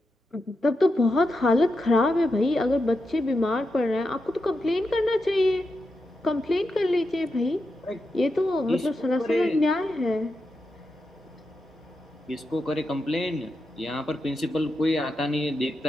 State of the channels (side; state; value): both; normal; correlation 0.87